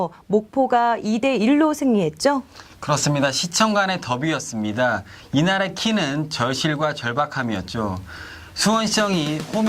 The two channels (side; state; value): both; identical; correlation 1.00